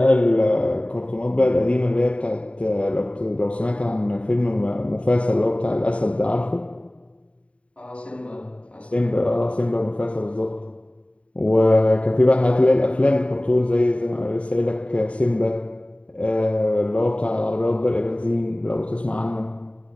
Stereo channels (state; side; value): late; right; 0.062 ms